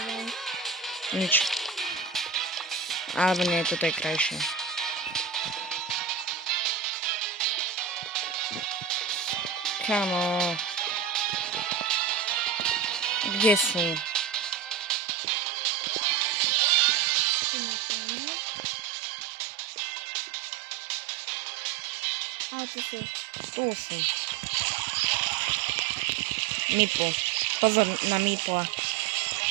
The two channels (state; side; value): drops out; left; at 15.0 s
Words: Nič. Alebo nie, toto je krajšie. Kamo. Kde sú? Tu nemáme. A tu sú. Tu sú. Mipl. Pozor na Mipla.